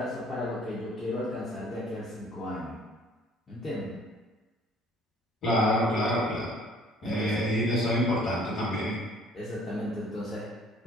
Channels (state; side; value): normal; both; correlation 0.56